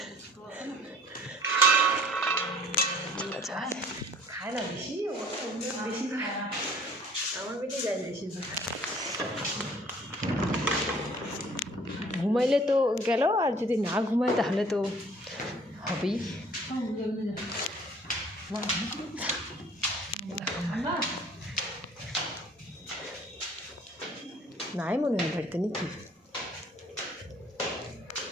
খায় না বেশি, বেশি খায় না, আমার পেটে যায় বেশিরভাগ। ঘুমাইলে তো গেল, আর যদি না ঘুমায় তাহলে তো হবেই। নাই মনে হয় বাড়িতে নাকি।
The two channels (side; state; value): both; normal; correlation 0.54